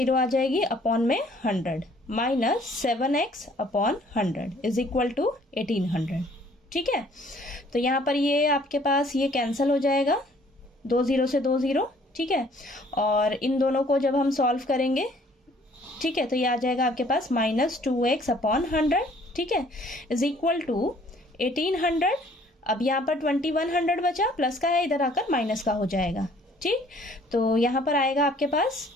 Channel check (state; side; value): normal; both; correlation 0.58